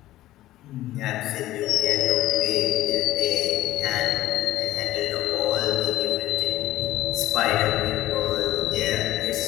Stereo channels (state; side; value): quieter; right; 15.2 dB